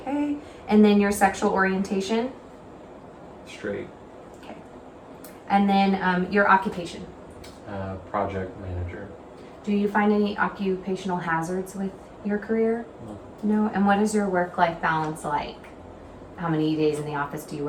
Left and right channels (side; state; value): both; identical; correlation 1.00